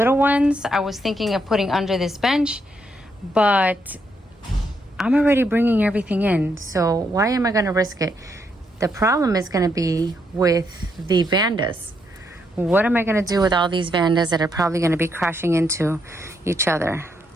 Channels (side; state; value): both; normal; correlation 0.77